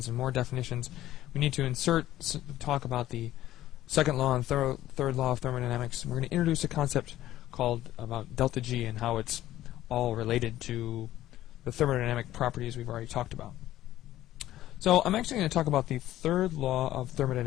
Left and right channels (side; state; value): right; quieter; 14.1 dB